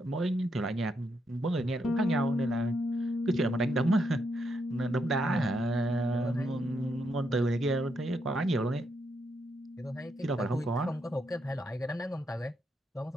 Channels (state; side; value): normal; both; correlation 0.79